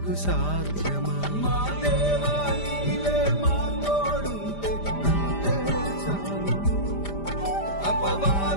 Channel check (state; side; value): late; right; 5.0 ms